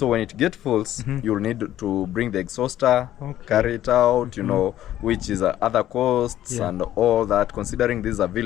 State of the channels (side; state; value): right; quieter; 12.7 dB